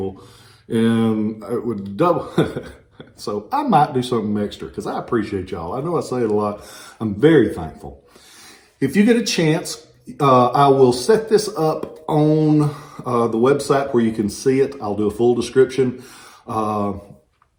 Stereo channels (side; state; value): both; identical; correlation 1.00